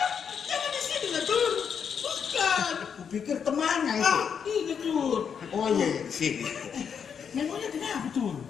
Jangan di sini lah, Tur. Bukan. Kupikir temannya itu. Ini, Tur. Oh iya, di sini. Memangnya kenapa, Tur?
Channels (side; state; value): right; quieter; 7.1 dB